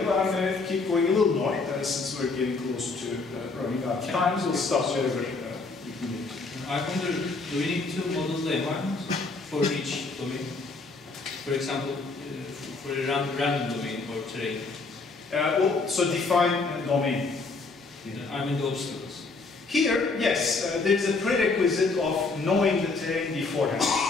but I'm going to keep going a little more since we're getting close to running out of time. So we'll stop wherever we can get to. I wonder, do we need to model the environment for each domain? For example, for a random domain or terrain? So define domain. I mean the obstacles. Here, yes, there's a prerequisite of knowing the terrain beforehand.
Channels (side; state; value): right; quieter; 3.9 dB